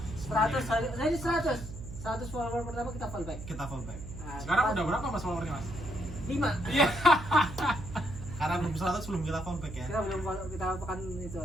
100 follower pertama kita follow back. Kita fallback. Nah, Sekarang udah berapa Mas followernya, Mas? 5. Iya. Karena belum 100 belum kita fallback ya. Kita belum follow, kita akan itu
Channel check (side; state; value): right; noise; hum, 11 dB below the sound